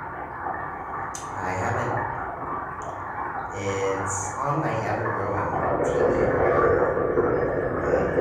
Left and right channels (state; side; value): identical; both; correlation 1.00